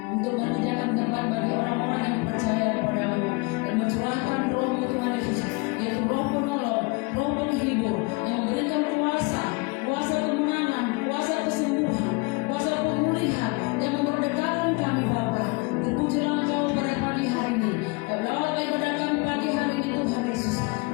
untuk menyediakan tempat bagi orang-orang yang percaya kepada-Mu dan mencurahkan Roh-Mu Tuhan Yesus, yaitu Roh penolong, Roh penghibur yang memberikan kuasa kemenangan, kuasa kesembuhan, kuasa pemulihan yang memerdekakan kami Bapa. Terpujilah Engkau pada pagi hari ini. Kau ibadah kami pagi hari ini Tuhan Yesus.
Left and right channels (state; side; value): quieter; right; 28.6 dB